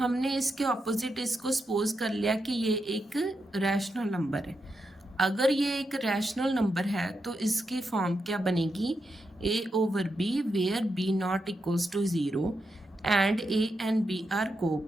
इसके ऑपोजिट इसको सपोज कर लिया कि ये एक रैशनल नंबर है। अगर ये एक रैशनल नंबर है तो इसकी फॉर्म क्या बनेगी, a/b where b not equals to 0 and a and b are को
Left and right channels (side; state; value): both; normal; correlation 0.85